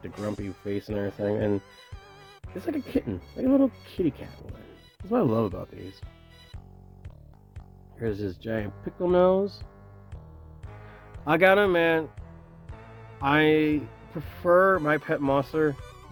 the grumpy face and everything. And it's like a kitten, like a little kitty cat one. That's what I love about these. Here's this giant pickle nose. I gotta admit, I prefer My Pet Monster,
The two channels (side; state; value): both; identical; correlation 1.00